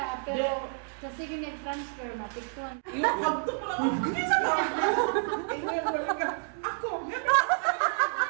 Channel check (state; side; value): silent; left; 58 dB below the other